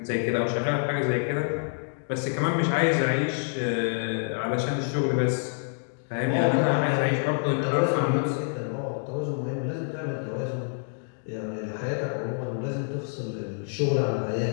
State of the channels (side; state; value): right; silent; 60 dB below the other